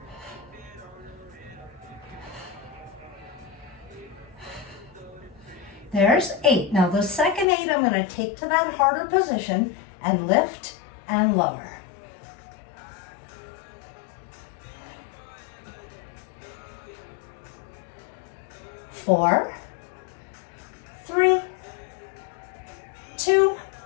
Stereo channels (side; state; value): right; drops out; at 7.5 s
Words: There's 8. Now the second 8 I'm going to take to that harder position and lift and lower. 4, 3, 2,